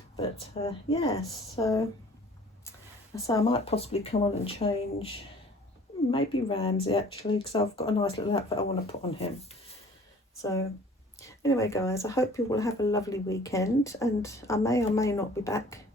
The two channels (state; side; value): normal; both; correlation 0.50